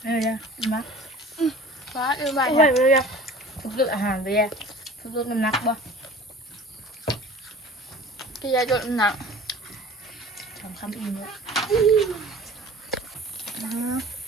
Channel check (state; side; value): normal; both; correlation 0.43